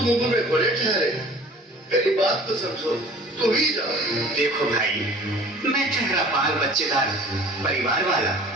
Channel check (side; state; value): both; normal; correlation 0.46